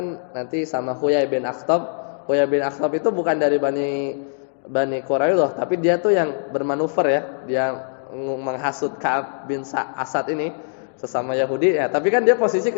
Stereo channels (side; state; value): right; silent; digital silence